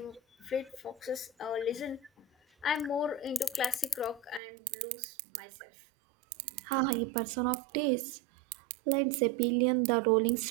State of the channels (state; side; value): drops out; left; at 4.4 s